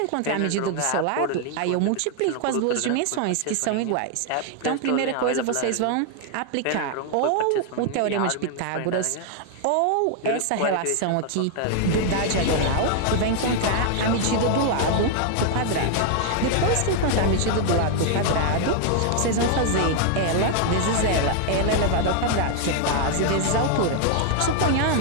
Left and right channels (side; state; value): both; different; correlation 0.00